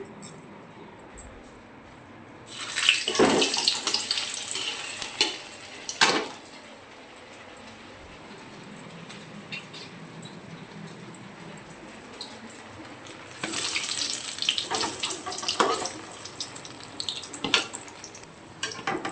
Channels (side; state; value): both; identical; correlation 1.00